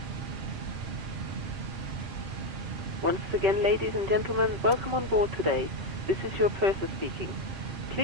Once again, ladies and gentlemen, welcome on board today. This is your purser speaking.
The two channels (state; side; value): late; left; 5.3 ms